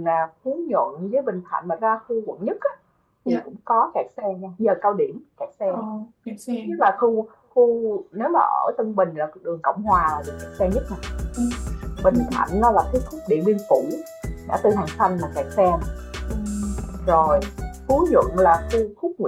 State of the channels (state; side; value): identical; both; correlation 1.00